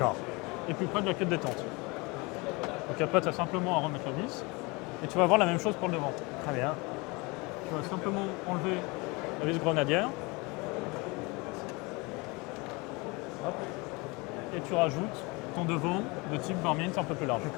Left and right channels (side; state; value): right; quieter; 26.5 dB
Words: et plus près de la queue de détente. Donc après, tu as simplement à remettre la vis, et tu vas avoir la même chose pour le devant. Très bien. Tu vas simplement enlever la vis grenadière. Hop. Et tu rajoutes ton devant de type Varmint un peu plus large.